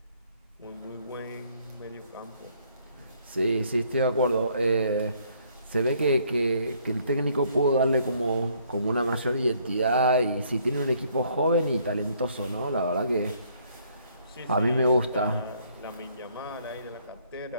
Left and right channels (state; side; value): inverted; both; correlation -0.65